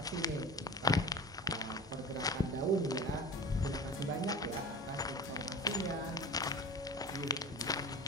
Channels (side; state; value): both; normal; correlation 0.34